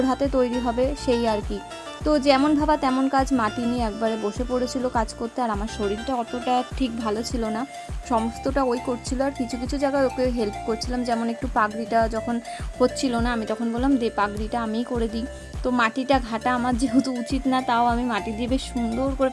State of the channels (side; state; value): both; identical; correlation 1.00